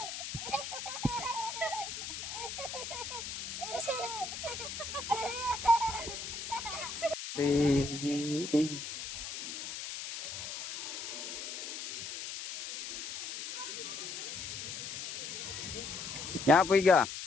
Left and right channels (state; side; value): noise; left; hiss, 6 dB below the sound